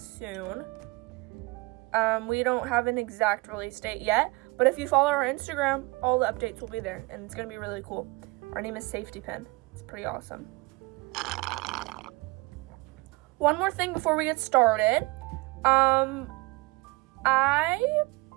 We don't have an exact release date yet, but if you follow our Instagram, all the updates will be there, and it's gonna be really cool. Our name is Safetypin. It's pretty awesome. One more thing before we get started. I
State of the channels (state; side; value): quieter; left; 23.7 dB